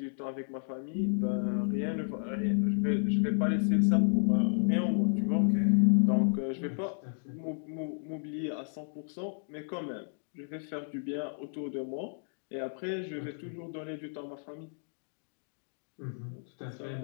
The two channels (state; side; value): silent; right; digital silence